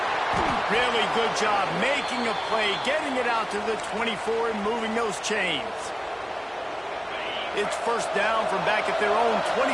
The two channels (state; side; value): identical; both; correlation 1.00